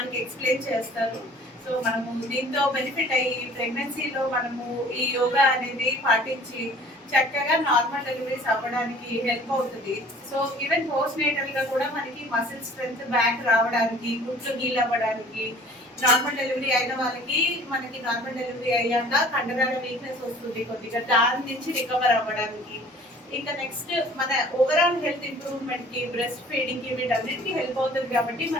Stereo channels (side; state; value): both; normal; correlation 0.50